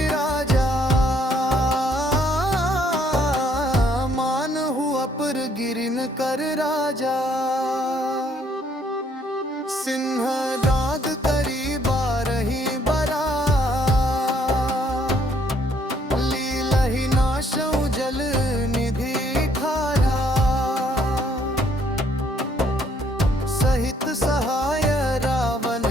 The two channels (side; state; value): both; normal; correlation 0.66